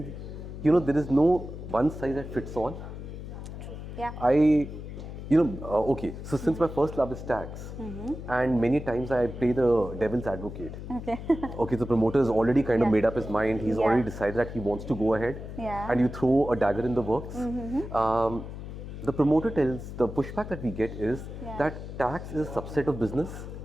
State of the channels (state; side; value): noise; left; hum, 10 dB below the sound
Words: there is no one size that fits all. Yeah. Okay, so since my first love is tax, and many times I play the devil's advocate. Okay. Okay, the promoter has already kind of made up his mind. He's already decided that he wants to go ahead, and you throw a dagger in the works. The promoter tells, the pushback that we get is that tax is a subset of business.